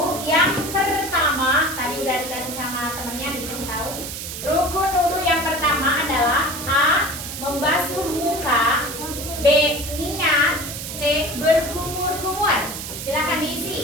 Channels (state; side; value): noise; right; hiss, 8 dB below the sound